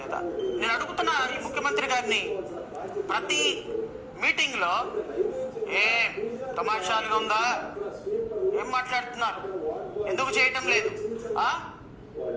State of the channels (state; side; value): identical; both; correlation 1.00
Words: లేదా? నేను అడుగుతున్నా ఈ ముఖ్యమంత్రి గారిని, ప్రతి మీటింగ్ లో ఏం తమాషాలుగా ఉందా, ఏం మాట్లాడుతున్నారు, ఎందుకు చేయటం లేదు,